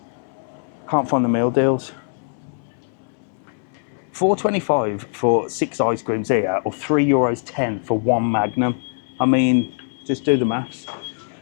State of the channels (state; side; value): silent; right; 63 dB below the other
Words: Can't find the meal deals. $4.25 for 6 ice creams here, or €3.10 for 1 Magnum. I mean, just do the maths.